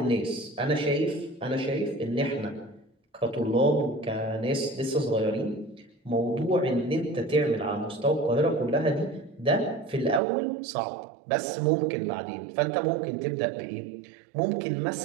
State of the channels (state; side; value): drops out; left; at 10.2 s